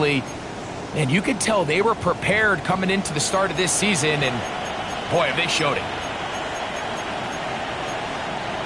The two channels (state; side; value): identical; both; correlation 1.00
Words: And you could tell they were prepared coming into the start of this season, and boy, have they showed it.